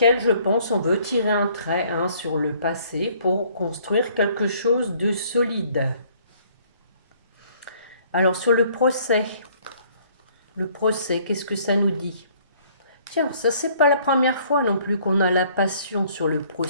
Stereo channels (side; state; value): both; inverted; correlation -0.60